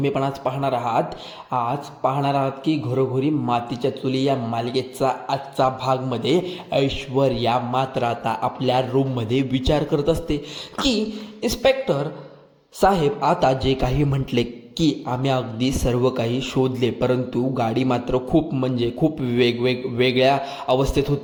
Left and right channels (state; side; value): identical; both; correlation 1.00